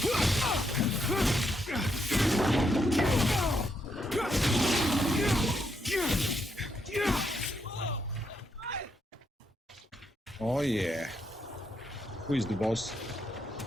Oh yeah. Who is the boss?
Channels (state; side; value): normal; both; correlation 0.79